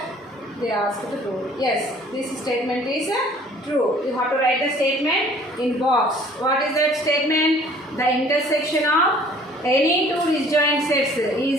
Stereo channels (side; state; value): both; normal; correlation 0.54